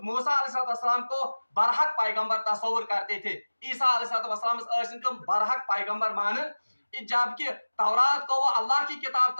मूसा अलैहिस्सलाम को बरहक पैगंबर तस्वुर करते थे। ईसा अलैहिस्सलाम तुम बरहक पैगंबर मानन, जबकि तौरात को वो अल्लाह की किताब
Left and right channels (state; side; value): inverted; both; correlation -1.00